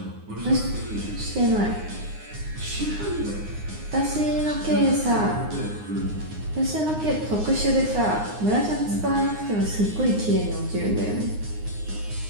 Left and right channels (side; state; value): left; late; 9.6 ms